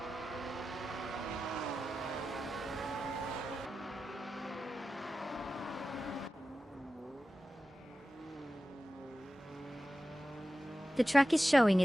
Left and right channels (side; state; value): both; normal; correlation 0.94